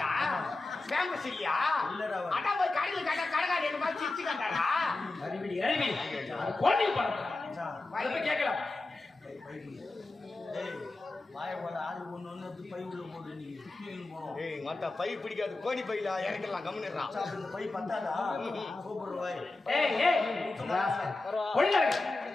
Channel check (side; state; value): right; quieter; 3.2 dB